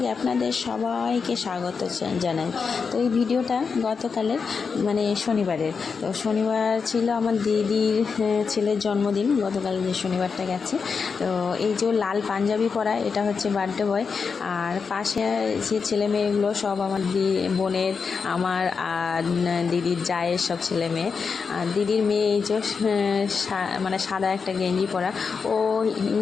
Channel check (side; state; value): right; quieter; 5.4 dB